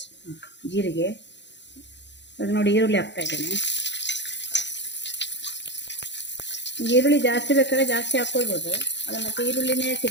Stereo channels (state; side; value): late; right; 0.52 ms